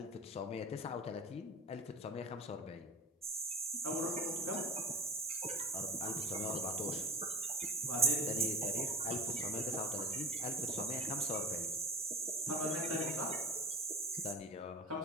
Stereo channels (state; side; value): normal; both; correlation 0.33